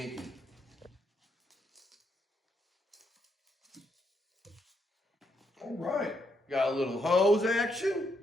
All right, got a little hose action.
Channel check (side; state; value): both; normal; correlation 0.77